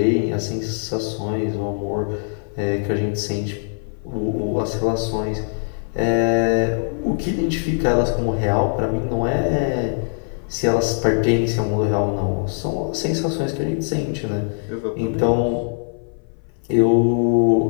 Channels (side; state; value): right; silent; 58 dB below the other